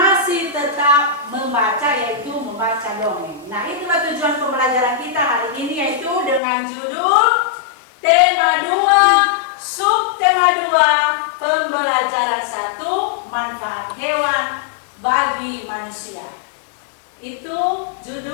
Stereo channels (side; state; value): right; drops out; at 6.4 s